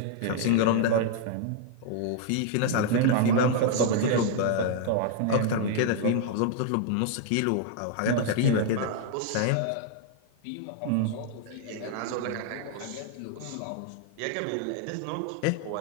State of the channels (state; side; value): different; both; correlation 0.00